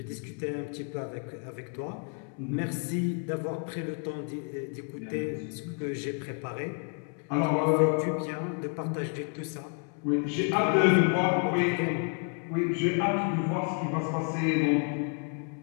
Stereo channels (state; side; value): quieter; right; 39.4 dB